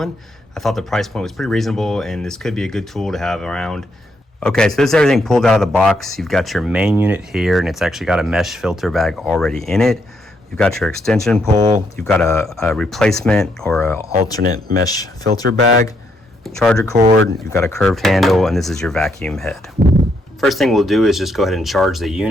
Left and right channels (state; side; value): normal; both; correlation 0.76